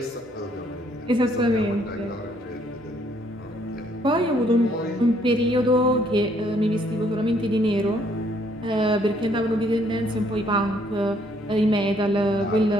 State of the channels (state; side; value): normal; both; correlation 0.67